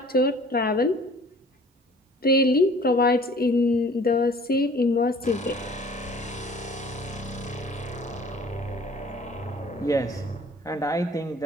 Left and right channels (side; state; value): both; normal; correlation 0.50